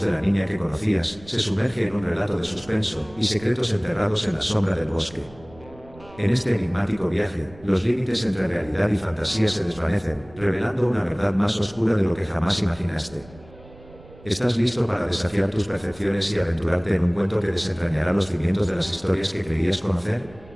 de la niña que conocías, se sumerge en un relato de suspenso, y secretos enterrados en la sombra del bosque. En este enigmático viaje, los límites entre realidad y fantasía se desvanecen, revelando una verdad más oscura de lo que jamás imaginaste. ¿Estás listo para desafiar tus percepciones y aventurarte en un cuento que desentrañará los cimientos de las historias que creías conocer?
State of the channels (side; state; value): right; noise; rumble, 22 dB below the sound